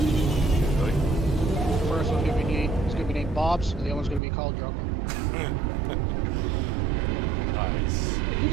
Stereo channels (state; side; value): drops out; left; at 4.2 s